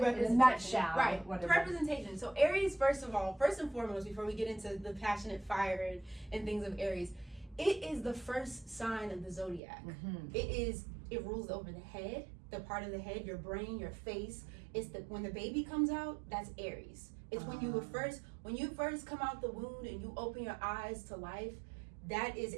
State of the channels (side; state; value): left; drops out; at 9.6 s